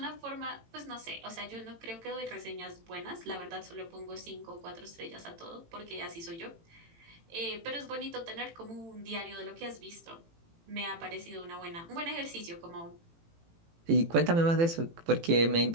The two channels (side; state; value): left; late; 18 ms